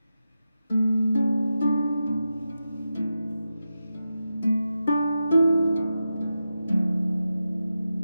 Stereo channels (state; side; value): inverted; both; correlation -0.89